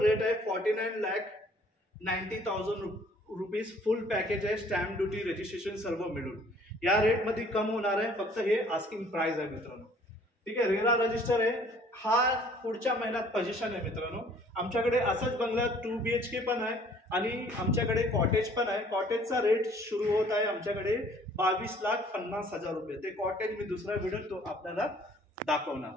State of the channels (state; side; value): normal; both; correlation 0.56